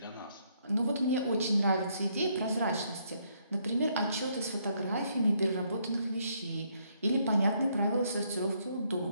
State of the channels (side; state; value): both; inverted; correlation -0.72